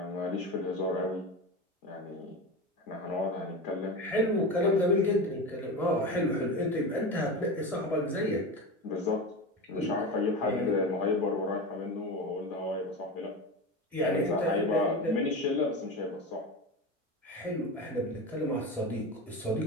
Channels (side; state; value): both; normal; correlation 0.24